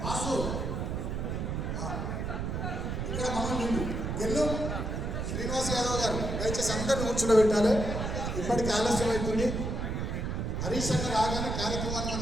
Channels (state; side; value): noise; right; rumble, 2 dB below the sound